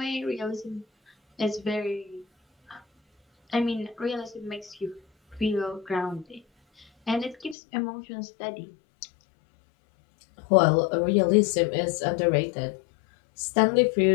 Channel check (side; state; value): right; drops out; at 7.6 s